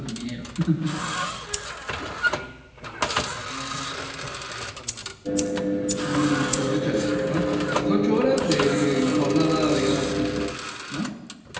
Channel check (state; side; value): identical; both; correlation 1.00